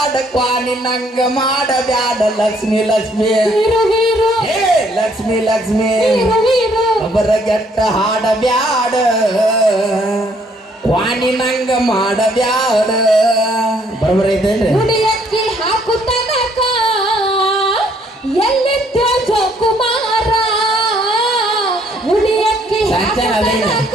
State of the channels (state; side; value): normal; both; correlation 0.66